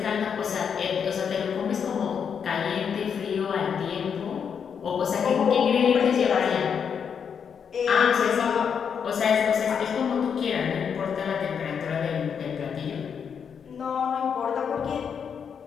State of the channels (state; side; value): quieter; right; 7.1 dB